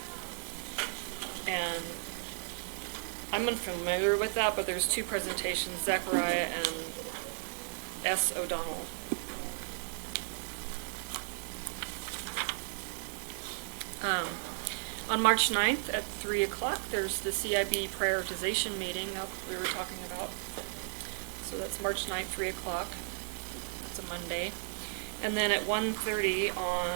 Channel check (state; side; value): silent; left; 55 dB below the other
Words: And I'm unfamiliar with that, but there's 2 presentations, Zachariah and S. O'Donnell. On March 9th at 3 o'clock, there's the CIB prioritization meeting that we were talking about. So that's March 9th, 3 o'clock. It's a Monday. And then at 1:30